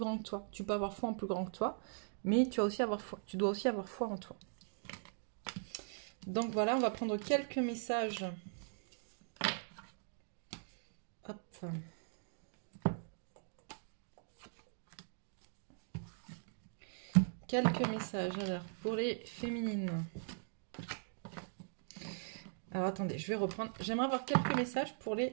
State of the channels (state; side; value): silent; left; digital silence